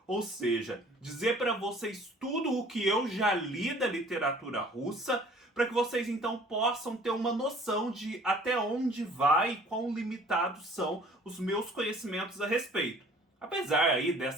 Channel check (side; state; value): both; normal; correlation 0.52